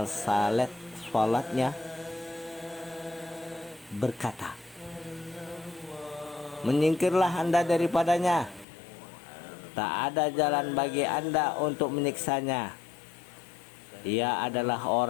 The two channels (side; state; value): right; drops out; at 8.7 s